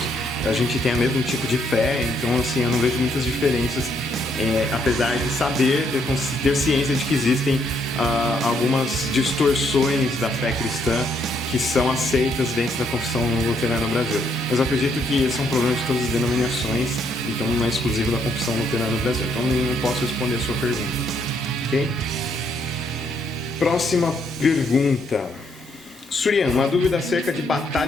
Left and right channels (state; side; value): normal; both; correlation 0.72